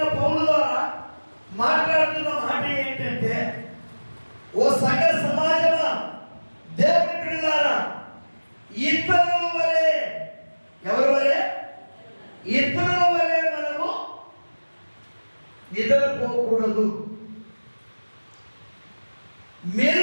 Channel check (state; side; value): inverted; both; correlation -1.00